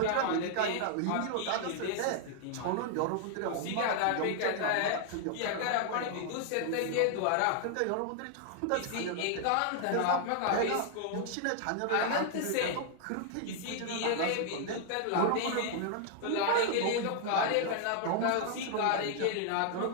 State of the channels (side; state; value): both; different; correlation 0.00